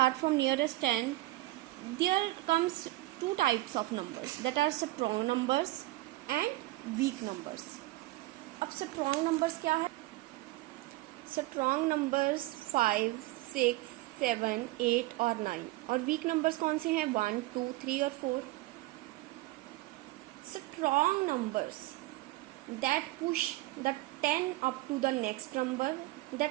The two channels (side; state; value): left; quieter; 18.8 dB